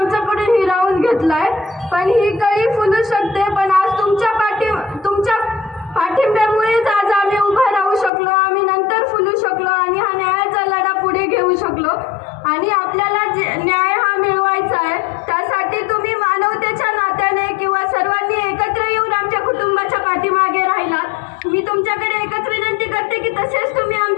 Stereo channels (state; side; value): drops out; right; at 8.1 s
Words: हिरावून घेतलाय. पण ही कळी फुलू शकते, पण आज तुमच्या पाठिंब्यामुळेच आज आम्ही उभा राहू शकलो, आम्ही नंतर फुलू शकलो आणि हा न्यायाचा लढा पुढे घेऊ शकलो. आणि आपल्याला न्याय हा मिळवायचा आहे, त्यासाठी तुम्ही मानवतेच्या नात्याने किंवा सर्वांनी एकत्र येऊन आमच्या कुटुंबाच्या पाठीमागे राहिलात. मी तुमच्याकडे एकच विनंती करते की तसेच तुम्ही